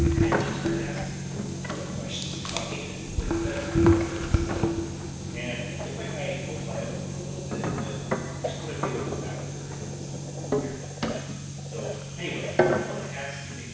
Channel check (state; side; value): identical; both; correlation 1.00